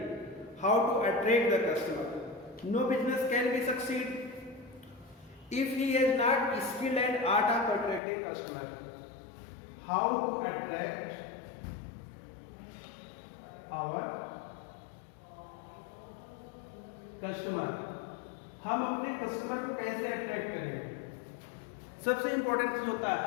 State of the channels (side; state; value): right; drops out; at 8.0 s